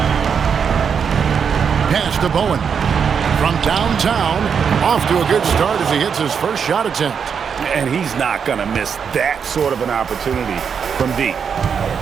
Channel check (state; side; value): quieter; left; 6.8 dB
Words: Pass to Bowen. From downtown, off to a good start as he hits his first shot attempt. And he's not going to miss that sort of an opportunity from deep.